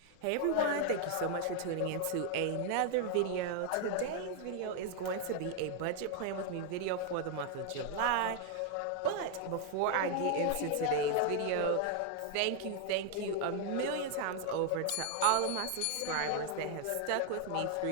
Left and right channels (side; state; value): both; different; correlation 0.00